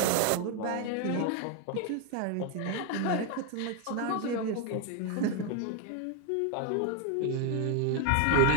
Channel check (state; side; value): different; both; correlation 0.01